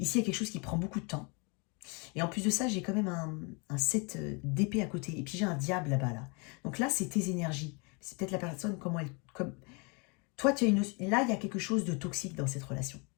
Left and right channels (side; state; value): right; quieter; 31.8 dB